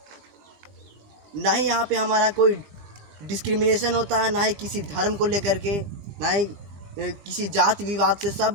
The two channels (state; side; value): late; left; 20 ms